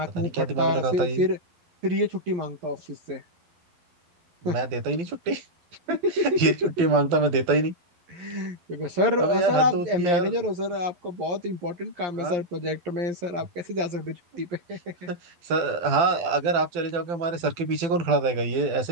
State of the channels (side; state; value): left; late; 12 ms